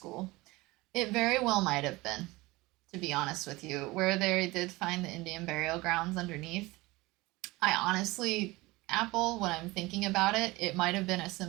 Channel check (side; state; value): left; quieter; 21.3 dB